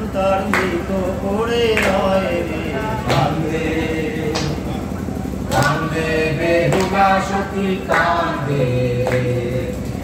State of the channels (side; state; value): both; identical; correlation 1.00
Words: তার মৃত করে রয় রে কান্দে। কান্দে বেহুলা সখী কান্দে,